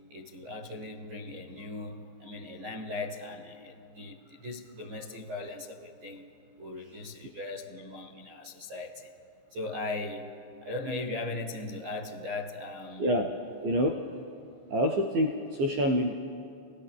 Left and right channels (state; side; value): late; left; 15 ms